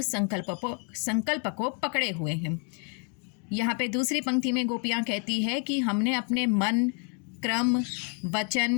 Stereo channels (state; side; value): quieter; right; 39.9 dB